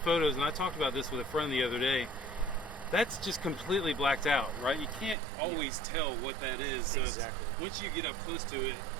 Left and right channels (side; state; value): left; drops out; at 5.2 s